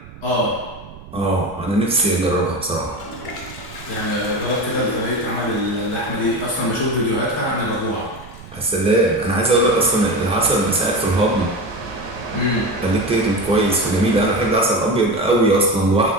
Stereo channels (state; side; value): noise; right; rumble, 18 dB below the sound